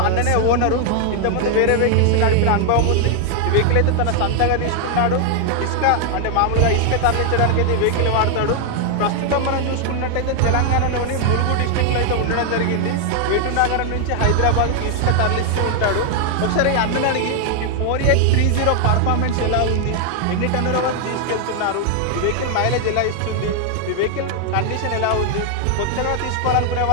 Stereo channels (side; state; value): both; different; correlation 0.00